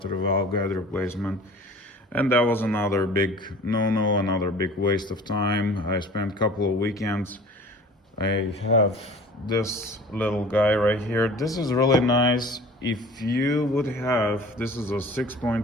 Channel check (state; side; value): normal; both; correlation 0.44